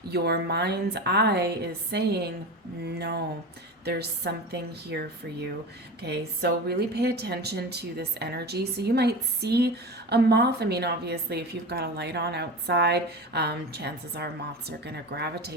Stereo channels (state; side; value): normal; both; correlation 0.28